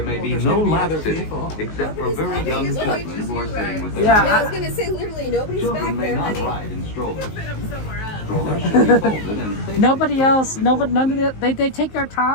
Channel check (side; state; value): right; late; 19 ms